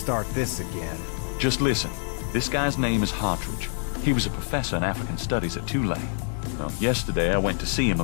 this again. Just listen. This guy's name is Hartridge. He was a professor in African Studies at Tulane. Well, yesterday I went to see him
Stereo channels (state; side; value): silent; right; digital silence